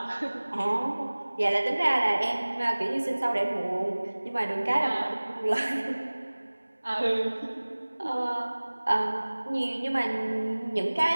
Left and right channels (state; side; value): inverted; both; correlation -1.00